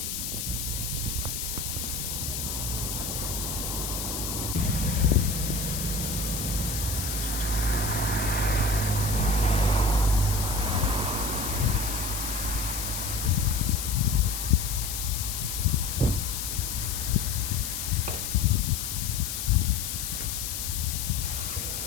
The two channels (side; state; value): left; noise; hiss, 3 dB below the sound